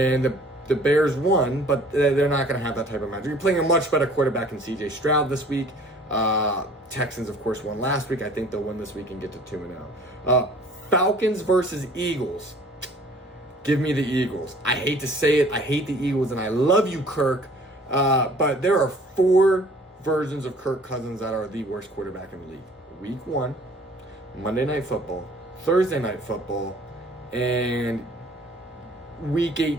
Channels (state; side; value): normal; both; correlation 0.52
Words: the Bears won, but they're not going to have that type of magic. You're playing a much better quarterback in C.J. Stroud this week. Texans, of course, won last week. I think they'll win this week and get to 2-0. Falcons versus Eagles. Give me the Eagles. I hate to say it. I hate the Eagles, and I love you, Kirk. But there are 4 versions of Kirk Cousins that are the worst quarterback in the league. Week 1, Monday Night Football, Thursday Night Football, and Week